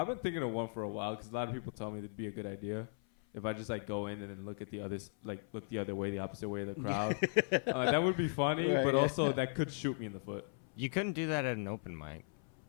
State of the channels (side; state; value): right; silent; 53 dB below the other